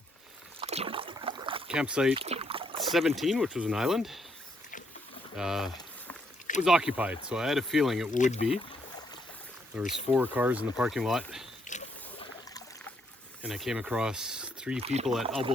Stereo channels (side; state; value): both; normal; correlation 0.73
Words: campsite 17, which was an island, was occupied, so I had a feeling it would be. There was 4 cars in the parking lot, and I came across 3 people at Elbow